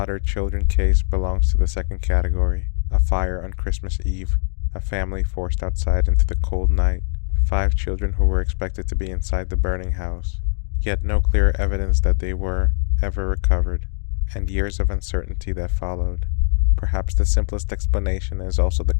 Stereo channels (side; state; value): right; silent; digital silence